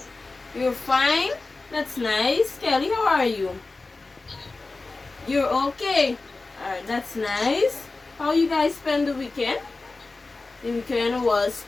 You're fine? That's nice. Kelly, how are you? You're okay? Alright, that's nice. How you guys spend the weekend? The weekend was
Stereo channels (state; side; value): quieter; right; 3.5 dB